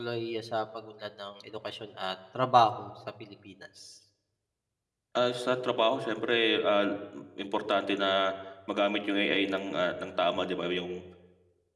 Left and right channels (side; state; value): both; identical; correlation 1.00